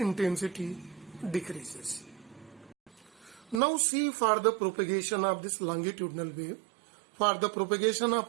decreases. Now see for the propagation of this longitudinal wave. For the propagation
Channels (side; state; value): left; drops out; at 3.6 s